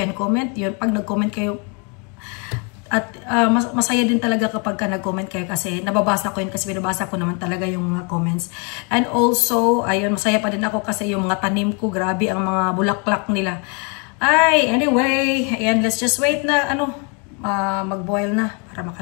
comment. Yun, pag nag-comment kayo, at masaya din talaga kapag nag-comment kayo kasi nababasa ko yun kasi binabasa ko naman talaga yung mga comments. And also, ayun, masaya pa din ako kasi yung mga tanim ko, grabe ang mga bulaklak nila. Anyway, ayan, let's just wait na, mag-boil na para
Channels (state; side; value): quieter; right; 35.0 dB